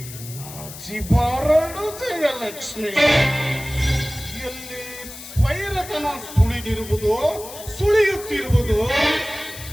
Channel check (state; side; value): noise; left; hiss, 13 dB below the sound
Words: ನಾಚಿ ಬಾರಡು ಜಯಲಕ್ಷ್ಮಿ. ಎಲ್ಲಿ ಸ್ವೈರತನ ಸುಳಿಯುತ್ತಿರುವುದು